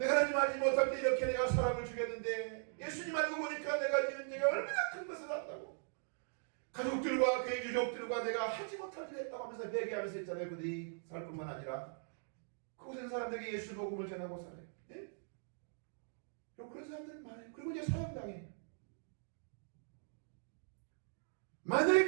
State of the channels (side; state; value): left; silent; digital silence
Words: 하나님 알지 못할 때 이렇게 내가 사람을 죽였는데 예수님 알고 보니까 내가 지은 죄가 얼마나 큰 것을 한다고 가족들과 그의 유족들과 내가 하지 못할 일을 했다고 하면서 회개하면서 있잖아요. 그들이 살 뿐만 아니라 그곳에 있는 사람들에게 예수 복음을 전하고 살아요. 예? 그런 사람들은 많아요. 그리고 이제 사형당해요.